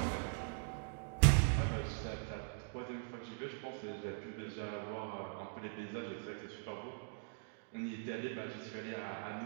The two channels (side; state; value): left; silent; digital silence